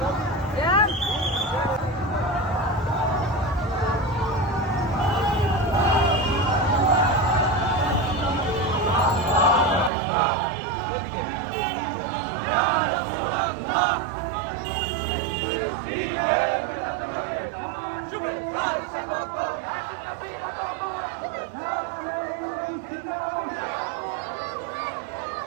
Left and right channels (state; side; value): drops out; left; at 9.9 s